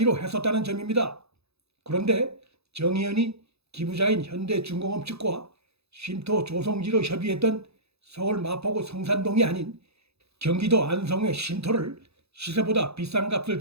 했었다는 점입니다. 그런데 정의연이 기부자인 현대중공업 측과 쉼터 조성지로 협의했던 서울 마포구 성산동이 아닌 경기도 안성의 쉼터를 시세보다 비싼 값을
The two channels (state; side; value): late; left; 0.79 ms